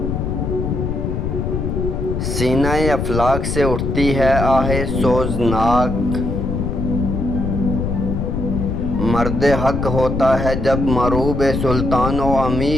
سینہ افلاک سے اٹھتی ہے آہ سوزناک، مرد حق ہوتا ہے جب مروب سلطان و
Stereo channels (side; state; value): left; noise; rumble, 2 dB below the sound